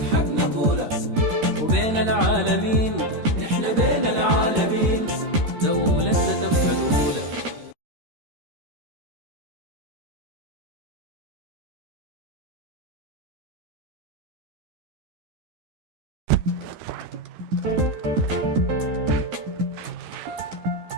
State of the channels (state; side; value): late; left; 13 ms